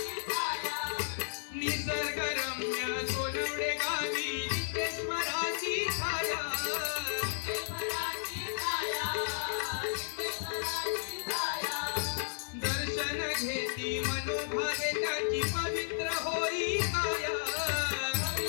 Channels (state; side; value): silent; right; digital silence